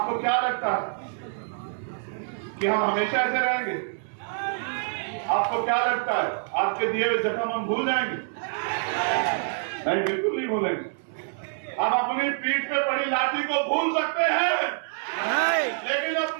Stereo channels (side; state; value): left; silent; 60 dB below the other